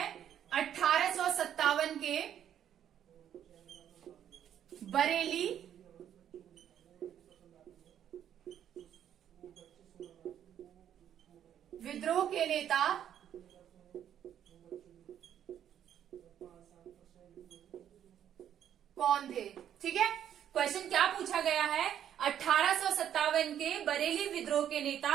1857 के बरेली विद्रोह के नेता कौन थे। ठीक है, क्वेश्चन क्या पूछा गया है, 1857 के बरेली विद्रोह के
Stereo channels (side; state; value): left; quieter; 10.0 dB